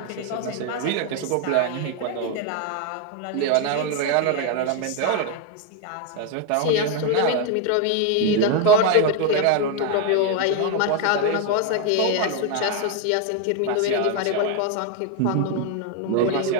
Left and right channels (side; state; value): both; different; correlation 0.01